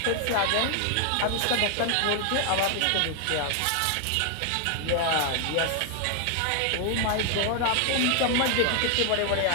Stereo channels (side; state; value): both; different; correlation 0.00